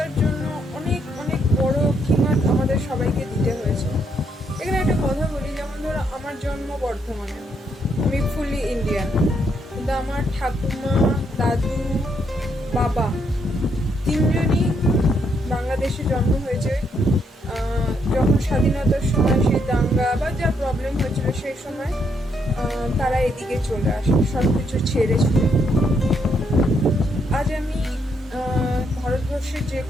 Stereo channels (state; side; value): normal; both; correlation 0.75